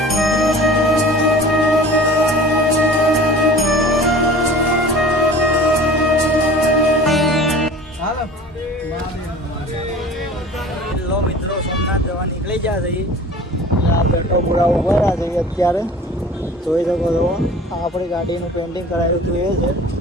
મિત્રો સોમનાથ જવા નીકળી ગયા છે. આ બેટો પૂરા ઉભા રહ્યા છે અત્યારે. જોઈ શકો છો આપણી ગાડીનું પેઇન્ટિંગ કરાવ્યું હતું એ છે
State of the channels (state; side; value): normal; both; correlation 0.43